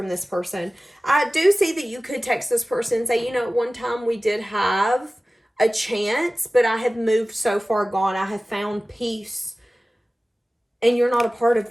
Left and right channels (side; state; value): both; normal; correlation 0.97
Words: this person. I do see that you could text this person and say, you know, at one time we did have a chance, but I have moved so far gone. I have found peace, and you're not a part of